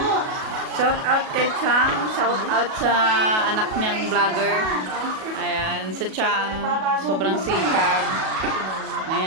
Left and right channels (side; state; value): left; late; 37 ms